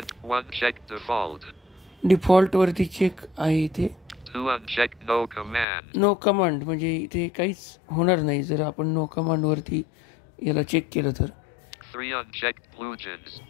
1 check default. डिफॉल्टवरती चेक आहे इथे. 2 unchecked no command. No command म्हणजे इथे काहीच होणार नाही जर आपण नो कमांडवरती याला चेक केलं तर. 3 unchecked plugins.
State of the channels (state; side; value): drops out; right; at 5.7 s